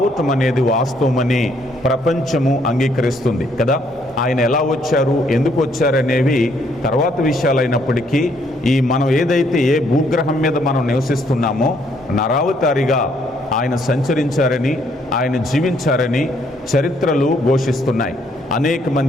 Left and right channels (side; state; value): both; normal; correlation 0.69